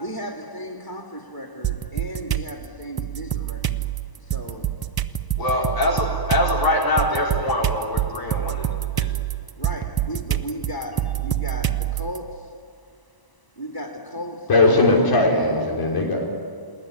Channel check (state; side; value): late; right; 1.0 ms